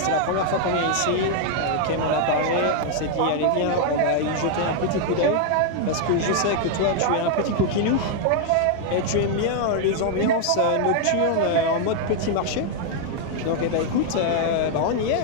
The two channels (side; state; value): both; different; correlation 0.00